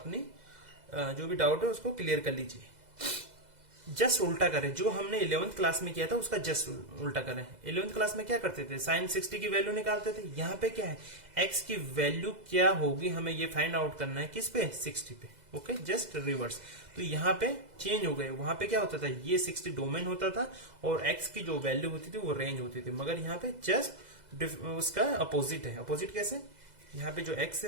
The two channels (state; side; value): late; left; 2.0 ms